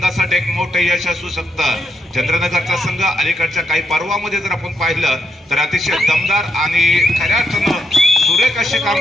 एक मोठं यश असू शकतं. चंद्रनगरचा संघ अलीकडच्या काही पर्वामध्ये जर आपण पाहिलं तर अतिशय दमदार आणि खऱ्या अर्थानं सुरेख अशी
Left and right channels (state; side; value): normal; both; correlation 0.79